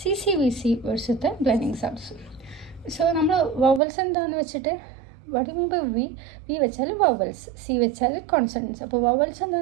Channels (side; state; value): left; drops out; at 3.8 s